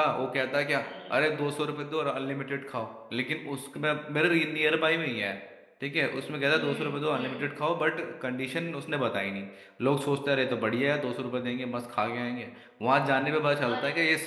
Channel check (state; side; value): identical; both; correlation 1.00